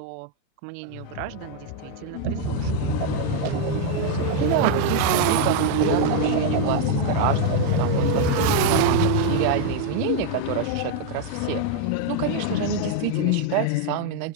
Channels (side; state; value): both; different; correlation 0.00